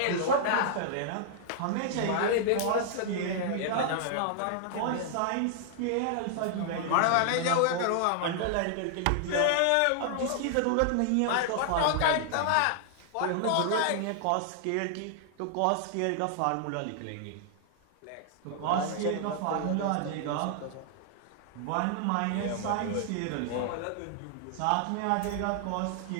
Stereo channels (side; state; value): both; different; correlation -0.01